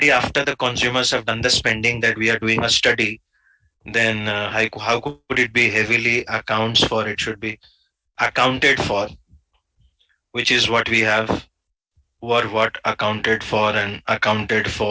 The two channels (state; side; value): identical; both; correlation 1.00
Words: after the consumers have done the spending that we are doing a study. Then how could it be heavily accounts for? It should be accounted for, which is what we have. Were what accounted for and